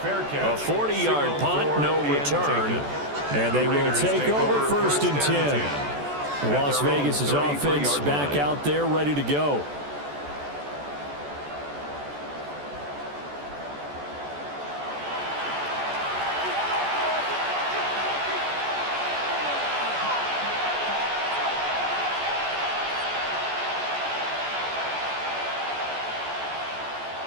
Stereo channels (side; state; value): left; late; 14 ms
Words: A 40-yard punt, no return. And they will take over 1st and 10. Las Vegas' offense back out there ready to go.